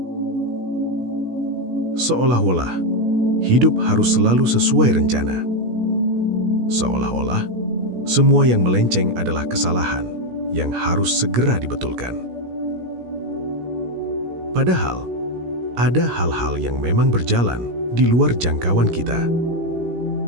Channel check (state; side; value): late; left; 17 ms